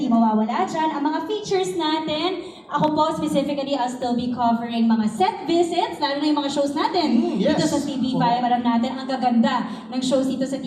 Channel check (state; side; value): identical; both; correlation 1.00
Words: mawawala dyan ang mga features natin. Ako po, specifically, I'll still be covering mga set visits, lalo na yung mga shows natin Yes. dito sa TV5. Alam natin, ang gaganda ng shows dito sa